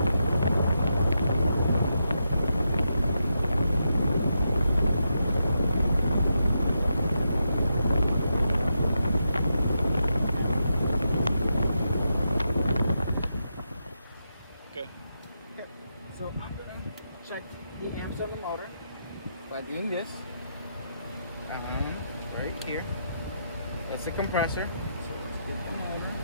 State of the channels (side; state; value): both; inverted; correlation -0.84